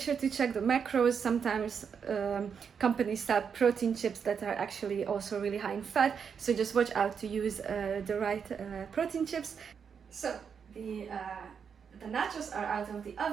to check the macros. Sometimes companies sell protein chips that are actually also really high in fat, so just watch out to use the right protein chips. So the nachos are out of the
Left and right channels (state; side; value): quieter; left; 6.8 dB